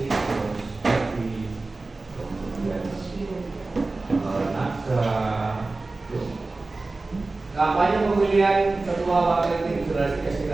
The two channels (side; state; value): left; quieter; 3.4 dB